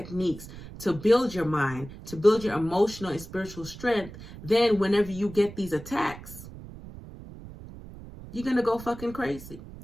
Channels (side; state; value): right; noise; rumble, 15 dB below the sound